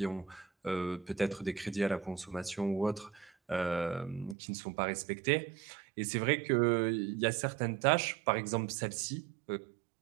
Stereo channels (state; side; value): drops out; left; at 4.4 s